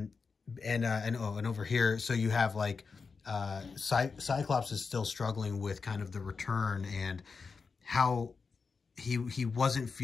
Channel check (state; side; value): quieter; right; 4.9 dB